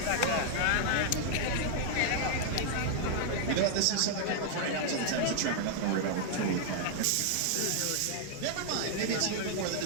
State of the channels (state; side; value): different; both; correlation -0.01